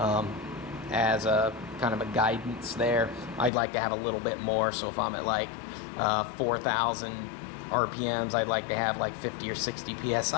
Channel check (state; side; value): drops out; right; at 3.5 s